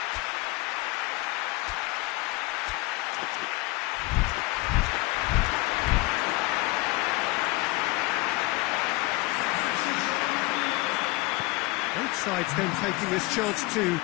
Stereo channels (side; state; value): right; quieter; 22.4 dB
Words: Both sides then taking this chance to